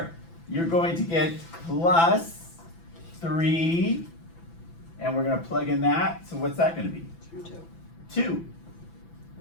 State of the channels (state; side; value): late; right; 6.0 ms